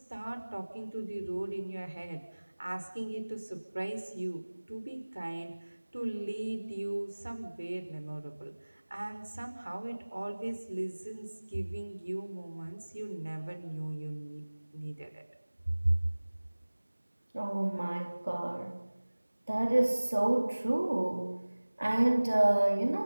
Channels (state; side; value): inverted; both; correlation -1.00